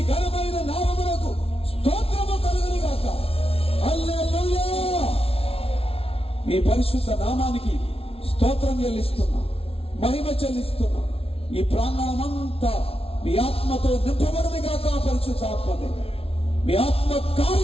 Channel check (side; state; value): right; late; 0.27 ms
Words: ఘనమైన నామమునకు స్తోత్రము కలుగును గాక. హల్లెలూయా. మీ పరిశుద్ధ నామానికి స్తోత్రం చెల్లిస్తున్నాం, మహిమ చెల్లిస్తున్నాం. ఈ ప్రాంగణమంతా మీ ఆత్మతో నింపబడును గాక. పరిశుద్ధ ఆత్మదే మీ ఆత్మ